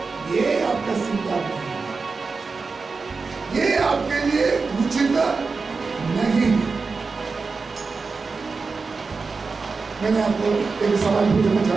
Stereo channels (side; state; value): left; quieter; 4.5 dB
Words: ये आपका श्रृंगार नहीं, ये आपके लिए उचित नहीं। मैंने आपको एक सवाल पूछना